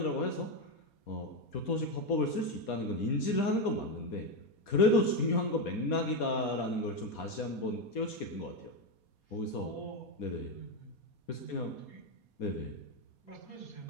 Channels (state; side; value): late; right; 4.2 ms